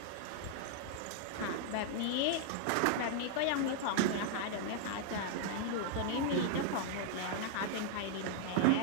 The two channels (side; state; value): both; different; correlation 0.00